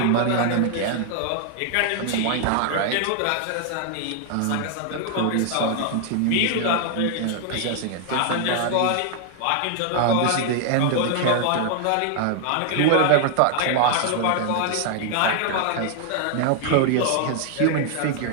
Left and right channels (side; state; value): both; different; correlation 0.00